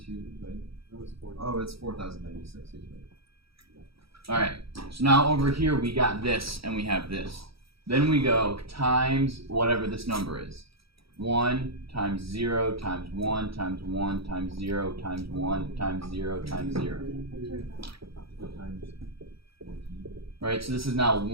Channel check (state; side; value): late; left; 0.76 ms